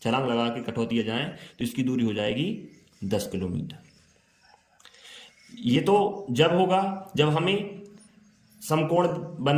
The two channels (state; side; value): identical; both; correlation 1.00